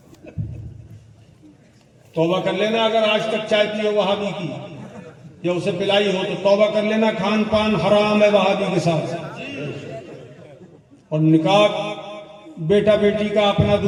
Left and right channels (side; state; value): both; identical; correlation 1.00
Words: توبہ کر لینا اگر آج تک چائے پی ہو وہابی کی یا اسے پلائی ہو تو توبہ کر لینا. کھان پان حرام ہے وہابی کے ساتھ. اور نکاح بیٹا بیٹی کا اپنا